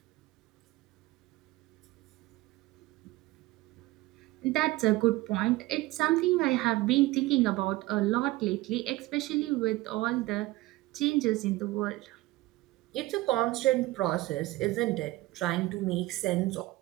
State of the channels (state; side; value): quieter; left; 18.9 dB